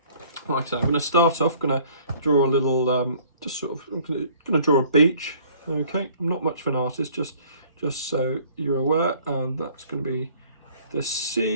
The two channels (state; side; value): inverted; both; correlation -0.55